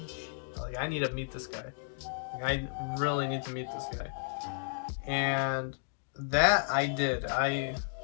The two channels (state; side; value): silent; right; digital silence